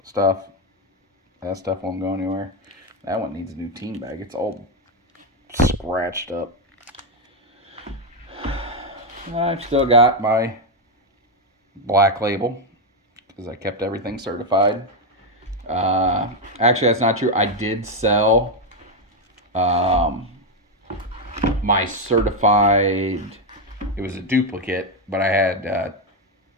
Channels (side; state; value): both; normal; correlation 0.05